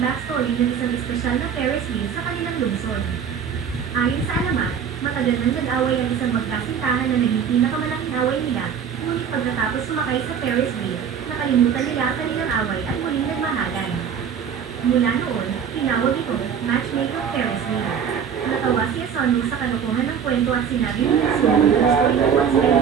backstory ng isang espesyal na Ferris wheel sa kanilang lungsod. Ayon sa alamat, matagal nang nag-away ang isang magkasintahan na naging pinakamalaking away nila, ngunit pagkatapos sumakay sa Ferris wheel, nakalimutan nila ang kanilang away at muling nagmahalan. Mula noon, tinawag ito, Matchmaker Ferris wheel. Natawa si Asano sa kalokohan ng kwento at sinabi ni Natsumi na gusto rin once kayo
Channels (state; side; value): quieter; left; 7.7 dB